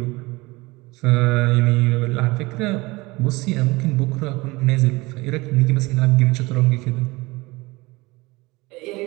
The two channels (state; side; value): quieter; left; 22.7 dB